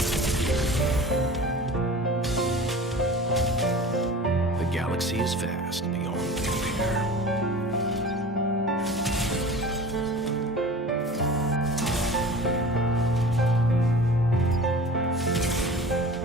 The galaxy is vast beyond compare.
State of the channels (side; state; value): both; normal; correlation 0.38